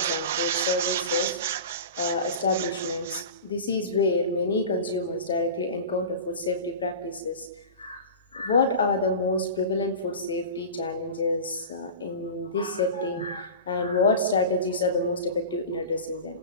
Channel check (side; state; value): both; inverted; correlation -0.32